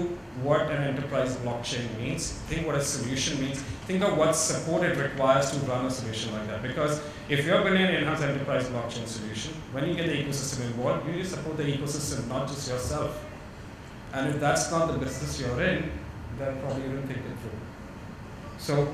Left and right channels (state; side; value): identical; both; correlation 1.00